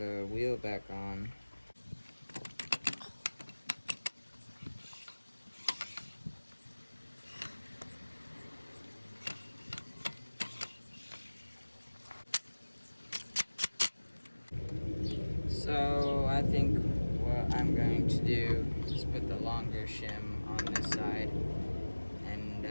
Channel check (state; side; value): inverted; both; correlation -1.00